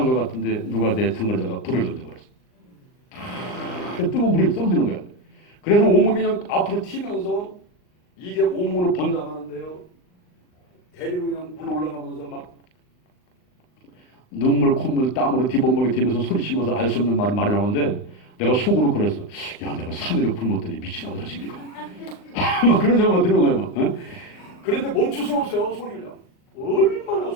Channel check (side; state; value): right; late; 39 ms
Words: 것 같은데, 누가 내 등으로다가 불을 던져버렸어. 뜨거운 물이 떨어지는 거야. 그래도 온몸이 그냥 앞으로 튀면서, 이게 온몸으로 번져나가는데요. 대리로 그냥 물 올라가면서 막, 눈물, 콧물, 땀으로 뒤범벅이 되면서 소리치면서 알 수 없는 말이 나오는데 내가 속으로 그랬어. 야, 내가 3일을 굶었더니 미치나 보다 지금 이거. 막 그런 생각만 드는 거예요. 막. 어? 그런데 멈출 수가 없어요. 소리를. 얼마나